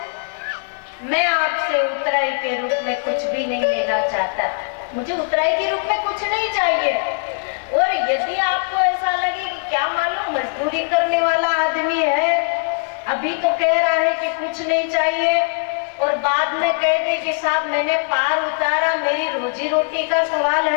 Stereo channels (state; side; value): silent; right; digital silence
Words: मैं आपसे उतराई के रूप में कुछ भी नहीं लेना चाहता, मुझे उतराई के रूप में कुछ नहीं चाहिए। और यदि आपको ऐसा लगे कि क्या मालूम मजदूरी करने वाला आदमी है, अभी तो कह रहा है कि कुछ नहीं चाहिए और बाद में कह दे कि साहब मैंने पार उतारा, मेरी रोजी रोटी का सवाल